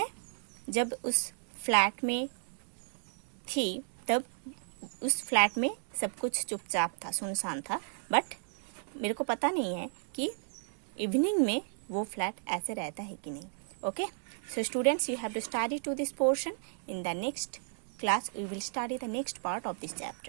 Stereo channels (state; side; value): silent; left; digital silence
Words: जब उस फ्लैट में थी तब उस फ्लैट में सब कुछ चुपचाप था, सुनसान था, बट मेरे को पता नहीं है कि इवनिंग में वो फ्लैट ऐसे रहता है कि नहीं। Okay, so students, you have to study to this portion. In the next class we will study the next part of this